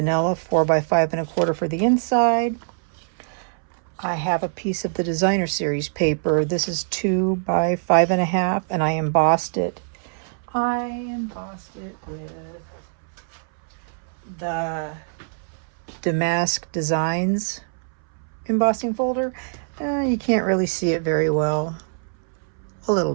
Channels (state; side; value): silent; left; 63 dB below the other